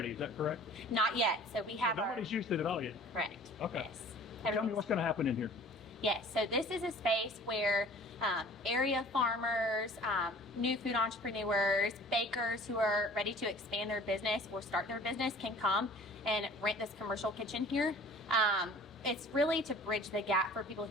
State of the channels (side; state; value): both; normal; correlation 0.47